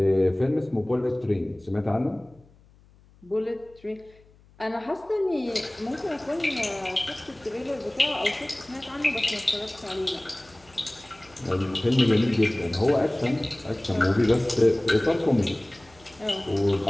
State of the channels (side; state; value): left; noise; hum, 28 dB below the sound